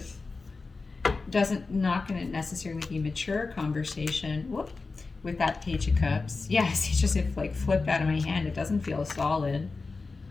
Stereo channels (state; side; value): quieter; right; 4.0 dB